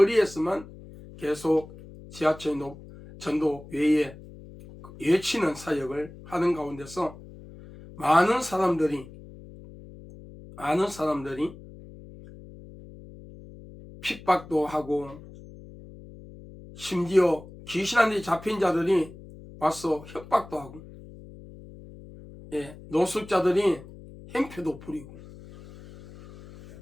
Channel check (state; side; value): noise; left; hum, 18 dB below the sound